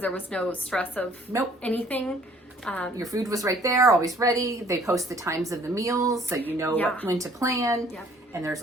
there was no stress of Nope. anything. Your food was right there, always ready. They post the times of the meals, so you know Yeah. when to plan. Yep. And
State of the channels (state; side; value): normal; both; correlation 0.58